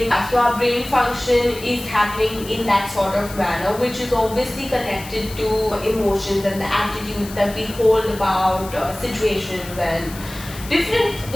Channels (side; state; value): left; noise; hiss, 15 dB below the sound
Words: So our brain function is happening in that sort of manner, which is obviously connected to emotions and the attitudes that we hold about situations and